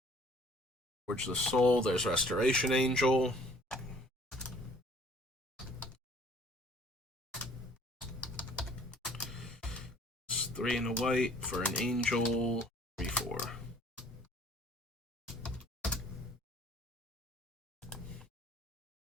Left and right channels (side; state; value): both; normal; correlation 0.56